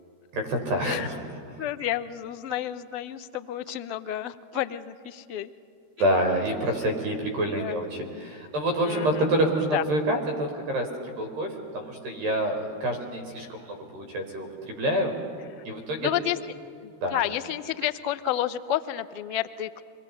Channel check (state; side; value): late; left; 13 ms